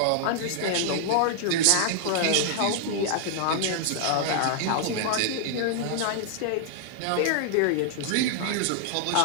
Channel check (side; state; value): both; different; correlation -0.01